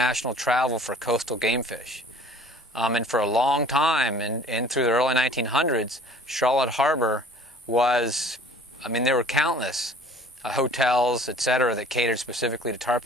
travel for coastal game fish. And for a long time, and through the early 1900s, Charlotte Harbor was, there were countless hotels, etc., that catered specifically to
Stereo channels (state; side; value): normal; both; correlation 0.50